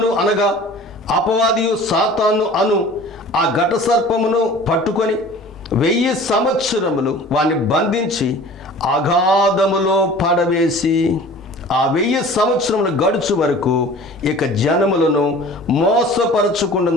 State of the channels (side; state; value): both; normal; correlation 0.44